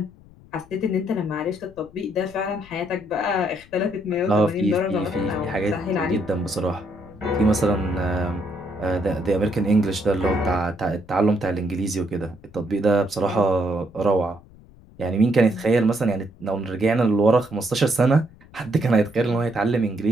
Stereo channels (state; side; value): noise; left; rumble, 24 dB below the sound